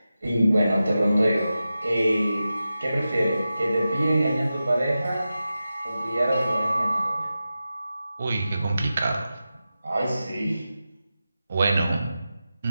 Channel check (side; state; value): both; inverted; correlation -0.92